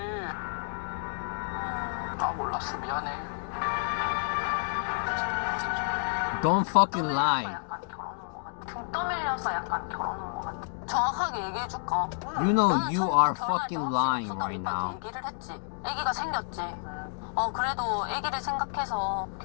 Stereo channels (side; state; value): right; silent; digital silence